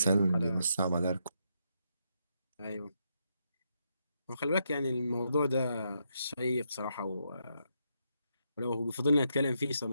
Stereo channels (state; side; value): inverted; both; correlation -0.80